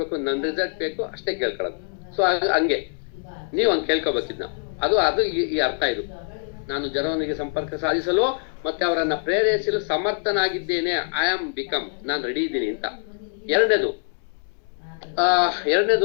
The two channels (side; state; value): right; silent; digital silence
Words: ನನ್ನ ರಿಸಲ್ಟ್ ಬೇಕು ಅಷ್ಟೇ ಕೇಳ್ಕೊಳ್ಳೋದು. ಸೊ ಹಂಗೆ ನೀವು ಹಂಗೆ ಕೇಳ್ಕೊಬೇಕಿದ್ನ. ಅದು ಈ ಅರ್ಥ. ಇದು ನಾನು ಜನರೊಂದಿಗೆ ಸಂಪರ್ಕ ಸಾಧಿಸಲು ಮತ್ತೆ ಅವರನ್ನ ಪ್ರೇರೇಪಿಸಲು ಸಮರ್ಥನಾಗಿದ್ದೇನೆ. ಐ ಆಮ್ ಬಿಕಮ್, ನಾನು ರೆಡಿ ಇದ್ದೀನಿ ಅಂತ. ಎರಡನೇದು